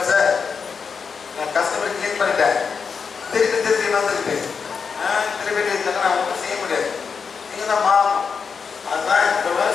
சார்? நான் கஸ்டமர் கிளிக் பண்ணிட்டேன். திருப்பி வந்துருக்கு. செலிபிரிட்டி இருந்தாங்க, நான் ஒன்றும் செய்ய முடியாது. நீங்க தான் மாறணும். அதுதான்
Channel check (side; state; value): right; quieter; 5.8 dB